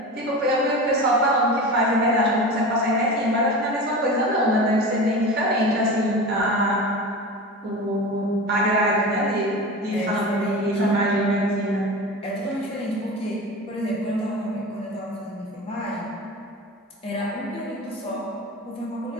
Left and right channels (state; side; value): normal; both; correlation 0.30